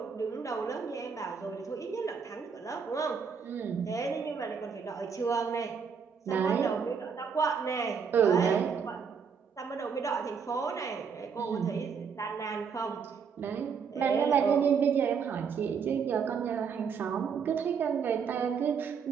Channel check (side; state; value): left; quieter; 6.3 dB